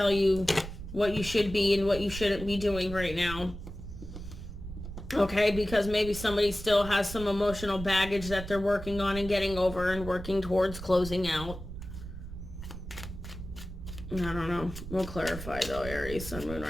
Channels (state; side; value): noise; right; rumble, 10 dB below the sound